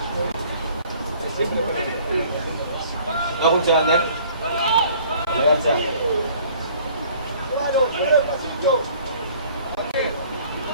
No funcionando, ¿eh?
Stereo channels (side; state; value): both; inverted; correlation -0.54